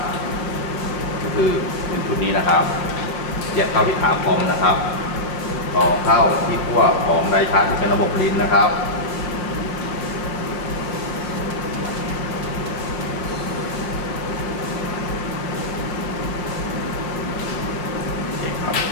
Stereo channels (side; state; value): right; late; 5.8 ms